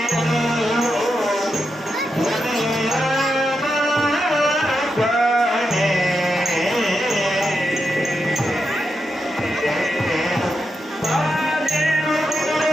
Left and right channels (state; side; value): normal; both; correlation 0.86